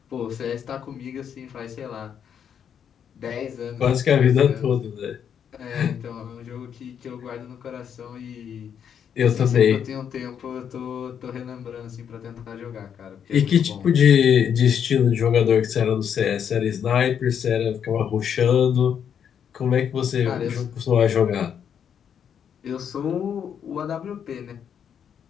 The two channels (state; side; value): quieter; right; 8.2 dB